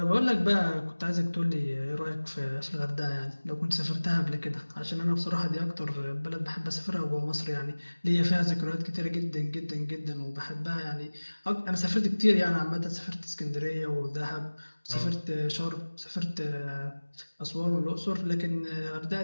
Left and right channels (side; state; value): both; inverted; correlation -1.00